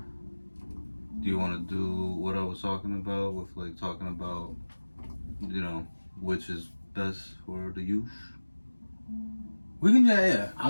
Do you want to do what I was talking about with like talking about, which is best for the youth? We can yeah.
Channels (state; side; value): inverted; both; correlation -1.00